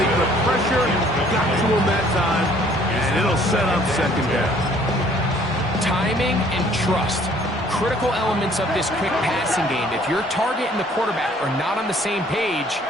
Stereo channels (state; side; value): normal; both; correlation 0.58